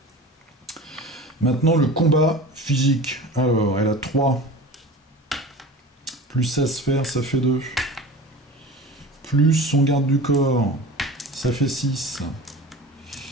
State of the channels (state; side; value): normal; both; correlation 0.36